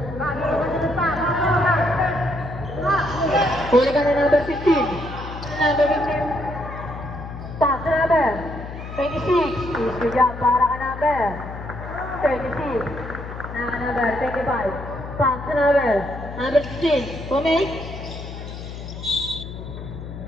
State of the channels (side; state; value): left; noise; hum, 10 dB below the sound